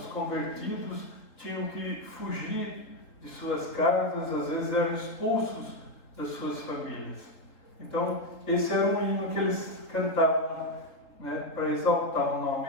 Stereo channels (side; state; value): right; late; 3.8 ms